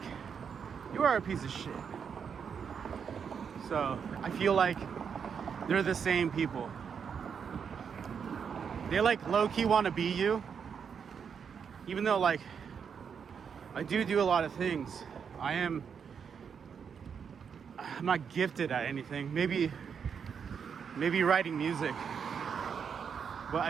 you are a piece of shit. So I feel like they're the same people. They like low-key want to be you, even though like I do a lot of things. I'm not gifted at anything. Maybe writing music, but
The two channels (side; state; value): left; quieter; 6.9 dB